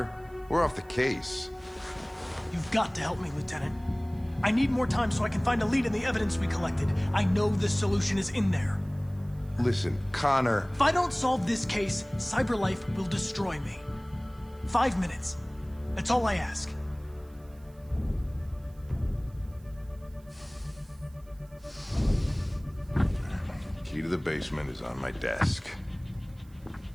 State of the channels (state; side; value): noise; right; hiss, 30 dB below the sound